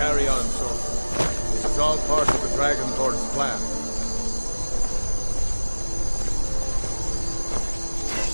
on, soldier. This is all part of the Dragonborn's plan.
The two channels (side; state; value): both; inverted; correlation -1.00